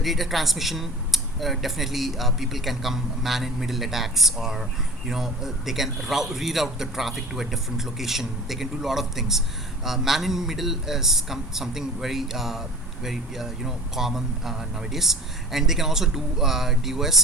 data transmission, definitely people can come man in middle attacks, or they can reroute the traffic to a different location. They can do a lot of things. Man in middle is something very common nowadays, and they can also do DOS,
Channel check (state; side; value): normal; both; correlation 0.41